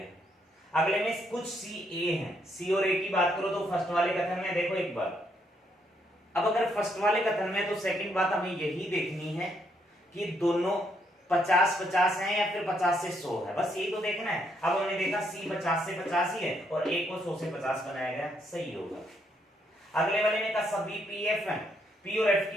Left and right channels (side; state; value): both; normal; correlation 0.74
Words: अगले में कुछ सी ए हैं, सी और ए की बात करो तो फर्स्ट वाले कथन में देखो एक बार, अब अगर फर्स्ट वाले कथन में तो सेकंड बात हमें यही देखनी है कि दोनों 50-50 हैं या फिर 50 से 100 है, बस यही तो देखना है। अब हमने देखा सी 50 से 50 ही है और ए को 100 से 50 बनाया गया, सही होगा। अगले वाले में कहा सभी पीएफ हैं, पी और एफ